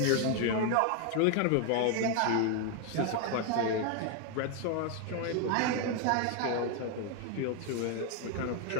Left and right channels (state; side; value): different; both; correlation 0.01